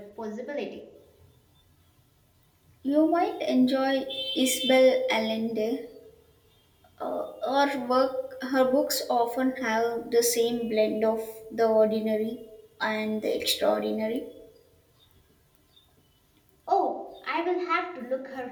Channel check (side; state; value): both; identical; correlation 1.00